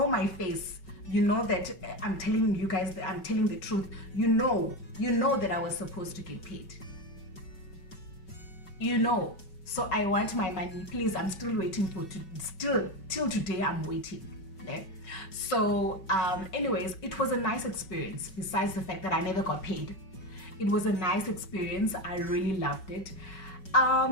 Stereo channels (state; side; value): late; right; 5.3 ms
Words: my face, you know that I'm telling you guys that I'm telling the truth. You know that I was supposed to get paid. You know. So I want my money. Please, I'm still waiting till today I'm waiting. Okay? So anyways, it was a nice experience. Besides the fact that I never got paid, it was a nice experience. I really loved it.